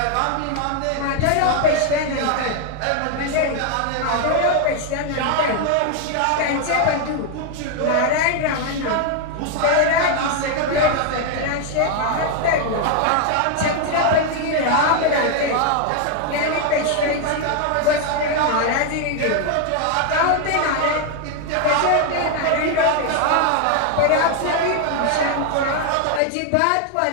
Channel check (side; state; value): both; different; correlation 0.00